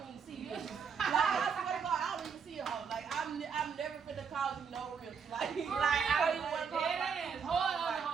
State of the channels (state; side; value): quieter; left; 6.4 dB